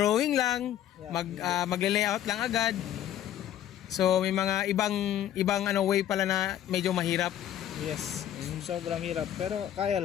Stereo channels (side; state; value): right; quieter; 11.3 dB